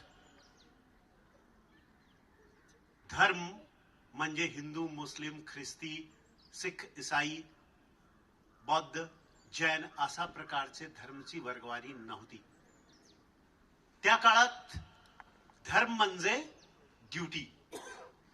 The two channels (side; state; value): both; identical; correlation 1.00